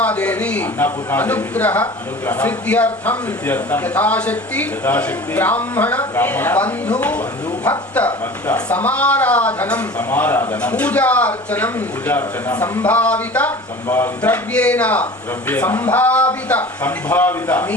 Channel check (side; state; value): both; normal; correlation 0.40